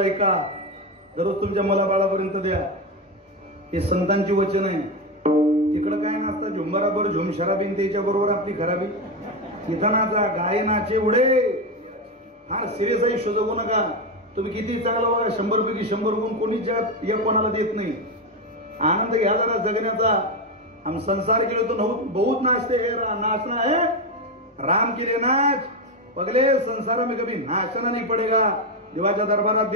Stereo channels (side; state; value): both; normal; correlation 0.12